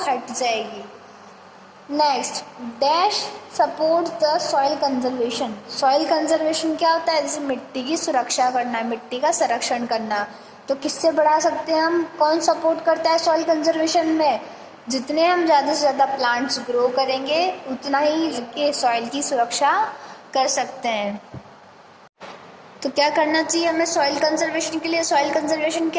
हट जाएगी. Next, dash support the soil conservation. Soil conservation क्या होता है? जैसे मिट्टी की सुरक्षा करना, मिट्टी का संरक्षण करना. तो किससे बढ़ा सकते हैं हम? कौन सपोर्ट करता है सॉइल कंजर्वेशन में? जितने हम ज़्यादा से ज़्यादा प्लांट्स ग्रो करेंगे उतना ही के सॉइल की सुरक्षा कर सकते हैं. तो क्या करना चाहिए हमें सॉइल कंजर्वेशन के लिए? सॉइल कंजर्वेशन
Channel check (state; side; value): identical; both; correlation 1.00